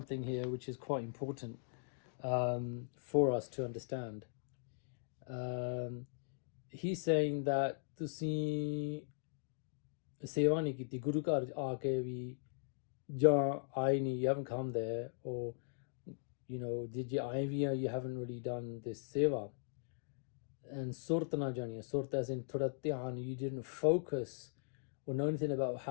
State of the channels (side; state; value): right; silent; digital silence